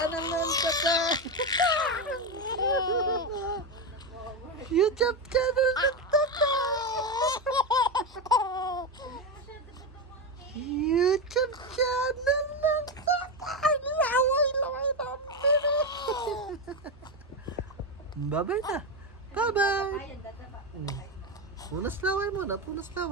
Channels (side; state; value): both; normal; correlation 0.12